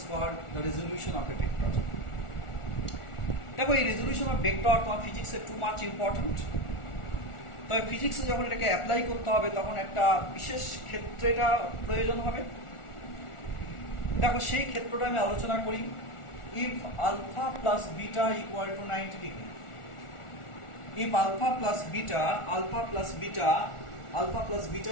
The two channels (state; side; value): late; right; 1.4 ms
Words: called the resolution of a vector. দেখো এই resolution of vector তোমার ফিজিক্সে too much important. তবে ফিজিক্সে যখন এটাকে অ্যাপ্লাই করতে হবে তখন একটা বিশেষ ক্ষেত্রে এটা প্রয়োজন হবে। দেখো সেই ক্ষেত্রটা আমি আলোচনা করি। If alpha plus beta equal to 90 degree, if alpha plus beta